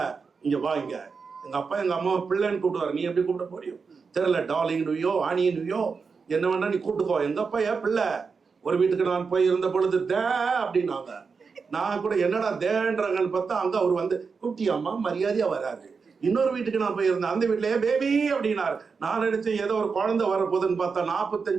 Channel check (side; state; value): left; quieter; 5.2 dB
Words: இங்க வா, இங்க எங்க அப்பா எங்க அம்மாவை பிள்ளைன்னு கூப்பிடுவாரு. நீ எப்படி கூப்பிட முடியும் தெரியல, டார்லிங் நுயோ, ஆனி நுயோ, என்ன வேணா நீ கூப்பிட்டுக்கோ. எங்க அப்பா ஏன் பிள்ளை. ஒரு வீட்டுக்கு நான் போய் இருந்த பொழுது தே அப்படின்னாங்க. நான் கூட என்னடா தேன்றாங்கன்னு பார்த்தா அங்க அவர் வந்து குட்டியம்மா மரியாதையா வராரு. இன்னொரு வீட்டுக்கு நான் போயிருந்தேன், அந்த வீட்டுலயே பேபி அப்படின்னாரு. நான் நினைச்சேன் ஏதோ ஒரு குழந்தை வரப்போகுதுன்னு பார்த்தா